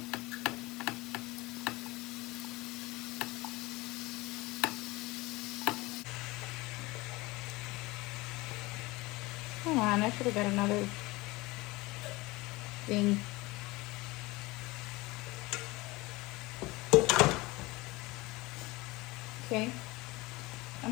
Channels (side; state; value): right; quieter; 22.0 dB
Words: Come on, I should have got another thing. Okay,